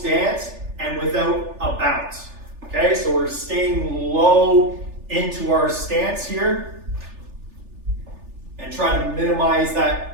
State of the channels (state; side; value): late; left; 3.4 ms